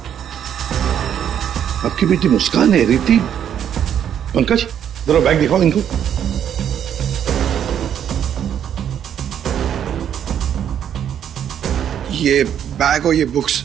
आपकी बेटी मुस्कान है? रिति? पंकज, जरा बैग दिखाओ इनको। ये बैग और ये बुक्स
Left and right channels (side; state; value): left; quieter; 9.4 dB